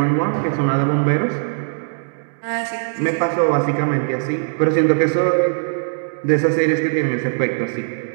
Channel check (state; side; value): silent; left; digital silence